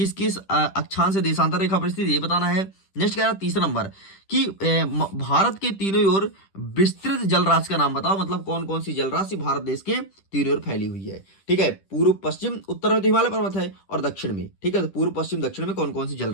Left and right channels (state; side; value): late; right; 10 ms